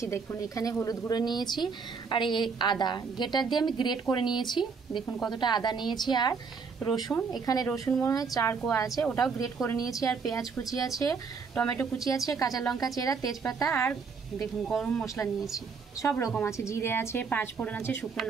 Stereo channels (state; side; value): quieter; left; 5.3 dB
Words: দেখুন এখানে হলুদ গুঁড়ো নিয়েছি, আর এই আদা গ্রেটার দিয়ে আমি গ্রেট করে নিয়েছি। দেখুন কতটা আদা নিয়েছি। আর রসুন, এখানে রসুন মনে হয় 4 কোয়া আছে, ওটাও গ্রেট করে নিয়েছি। আর পেঁয়াজ কুচি আছে, টমেটো কুচি আছে, কাঁচা লঙ্কা চেরা, তেজপাতা, আর দেখুন গরম মশলা নিয়েছি, সব রকম আছে, জিরে আছে, 5 ফোড়ন আছে, শুকনো